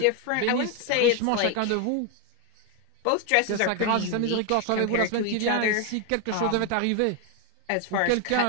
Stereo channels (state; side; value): different; both; correlation 0.01